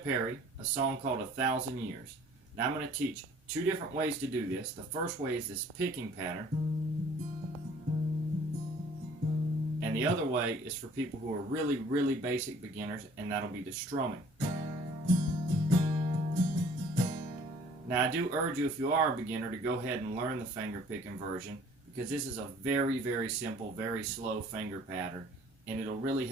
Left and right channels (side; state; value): both; normal; correlation 0.54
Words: Perri, a song called 1,000 Years. Now I'm going to teach two different ways to do this. The first way is this picking pattern, and the other way is for people who are really basic beginners, and that'll be the strumming. Now I do urge you, if you are a beginner, to go ahead and learn the finger picking version, because this is a very simple, very slow finger pattern, and it'll really